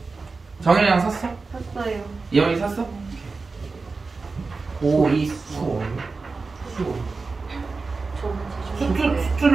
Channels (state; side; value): quieter; left; 4.1 dB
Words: 정현이랑 샀어? 샀어요. 이현이 샀어? 고2 수원.